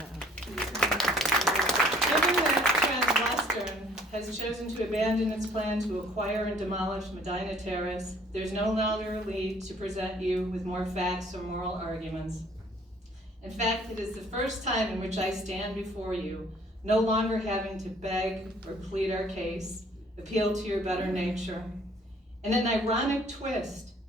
Given that Transwestern has chosen to abandon its plan to acquire and demolish Medina Terrace, there's no longer need to present you with more facts or moral arguments. In fact, it is the first time in which I stand before you, no longer having to beg or plead our case, appeal to your better nature. In an ironic twist,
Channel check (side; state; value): both; normal; correlation 0.58